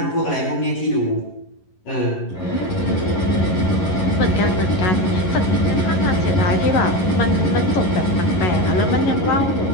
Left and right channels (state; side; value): late; right; 11 ms